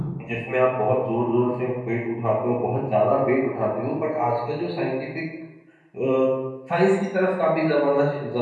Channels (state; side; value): identical; both; correlation 1.00